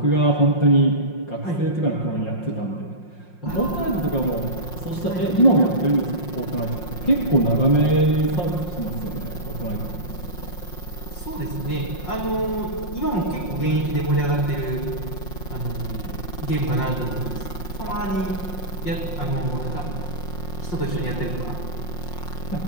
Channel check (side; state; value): right; late; 5.6 ms